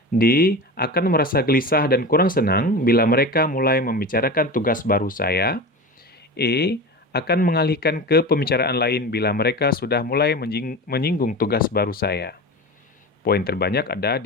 D. Akan merasa gelisah dan kurang senang bila mereka mulai membicarakan tugas baru saya. E. Akan mengalihkan ke pembicaraan lain bila mereka sudah mulai menyinggung tugas baru saya. Poin terbanyak ada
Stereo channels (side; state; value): both; normal; correlation 0.28